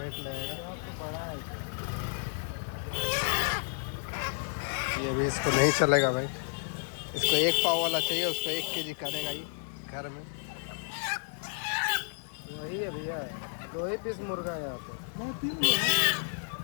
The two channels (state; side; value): silent; right; digital silence